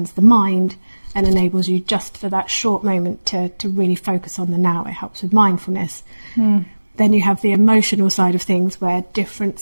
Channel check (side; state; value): both; inverted; correlation -1.00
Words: the mind and enables you, just for that short moment, to really focus on the now. It helps with mindfulness. Then you have the emotional side of things, where different